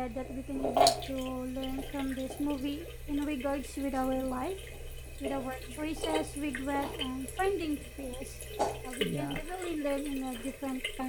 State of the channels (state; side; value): identical; both; correlation 1.00